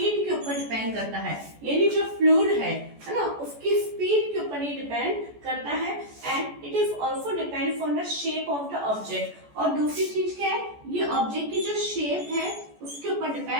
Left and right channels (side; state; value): left; late; 14 ms